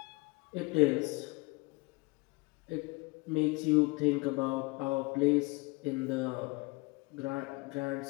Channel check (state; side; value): quieter; right; 26.2 dB